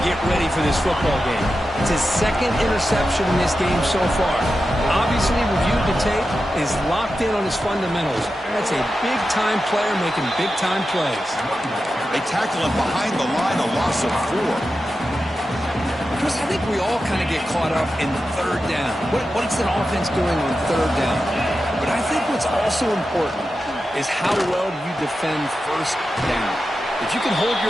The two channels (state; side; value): normal; both; correlation 0.91